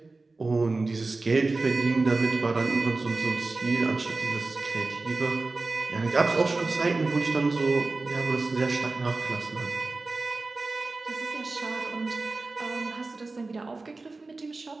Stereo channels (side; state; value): left; quieter; 3.5 dB